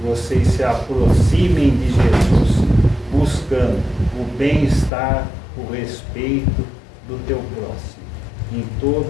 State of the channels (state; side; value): drops out; right; at 4.9 s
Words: se aproximem de Jesus, buscando o bem-estar, o respeito do teu próximo, em